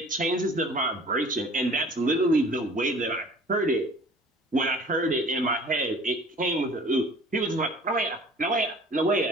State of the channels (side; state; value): both; normal; correlation 0.48